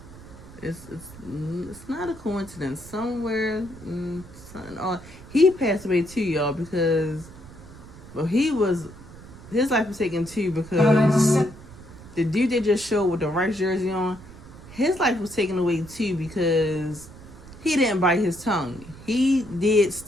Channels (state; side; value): noise; right; rumble, 18 dB below the sound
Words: It's not a coincidence. Somewhere, he passed away too, y'all, because his life was taken too because the dude they just showed with the Rice jersey on, his life was taken away too because he didn't bite his tongue. He did